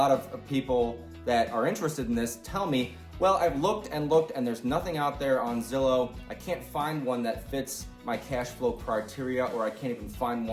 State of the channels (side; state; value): both; identical; correlation 1.00